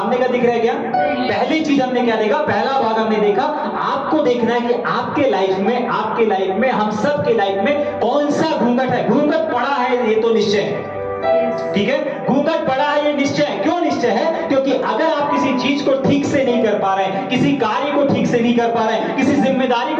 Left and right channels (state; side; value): identical; both; correlation 1.00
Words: का दिख रहा है क्या? नहीं। पहली चीज हमने क्या देखा? पहला भाग हमने देखा, आपको देखना है कि आपके लाइफ में, हम सब के लाइफ में कौन सा घूंघट है। घूंघट पड़ा है ये तो निश्चय है, ठीक है, घूंघट पड़ा है ये निश्चय है। क्यों निश्चय है? क्योंकि अगर आप किसी चीज को ठीक से नहीं कर पा रहे हैं, किसी कार्य को ठीक से नहीं कर पा रहे हैं, किसी जिम्मेदारी